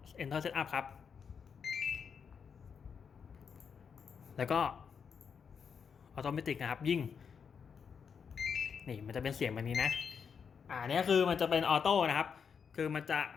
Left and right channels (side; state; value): right; quieter; 6.6 dB